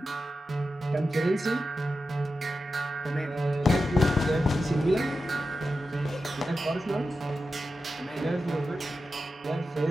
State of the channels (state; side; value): normal; both; correlation 0.91